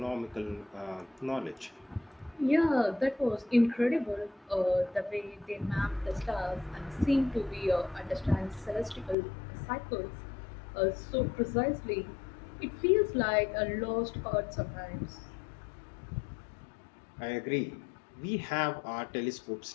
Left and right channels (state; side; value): drops out; right; at 9.2 s